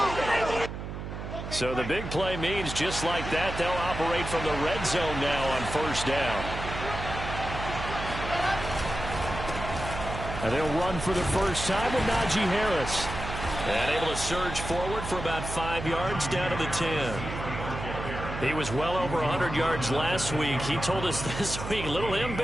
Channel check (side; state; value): right; noise; hum, 7 dB below the sound